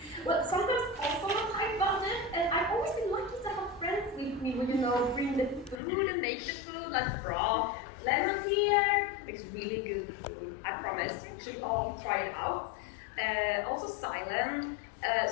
well, sometimes also on a tight budget, and I've always been lucky to have friends with me who, bring the food and make the food, like broth. Lemons here, it's really good food, I promise. You should all try it out. Also silent.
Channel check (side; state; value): right; drops out; at 5.8 s